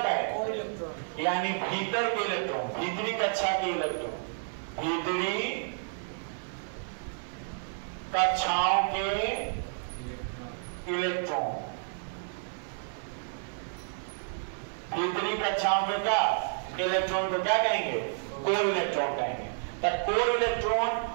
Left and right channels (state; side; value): silent; left; 57 dB below the other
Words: है, कोर इलेक्ट्रॉन। यानी भीतर के इलेक्ट्रॉन, भीतरी कक्षा के इलेक्ट्रॉन, भीतरी कक्षाओं के इलेक्ट्रॉन, भीतरी कक्षाओं के क्या इलेक्ट्रॉन को क्या कहेंगे, कोर इलेक्ट्रॉन कहेंगे। तो कोर इलेक्ट्रॉन